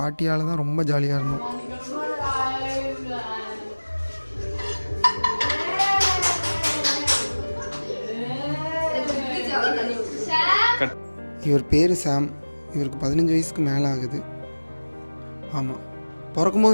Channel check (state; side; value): inverted; both; correlation -1.00